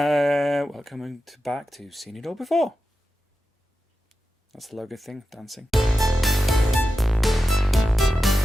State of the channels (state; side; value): normal; both; correlation 0.92